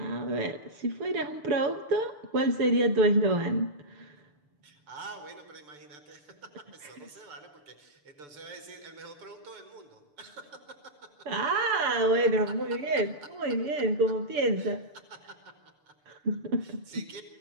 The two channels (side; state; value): left; late; 6.8 ms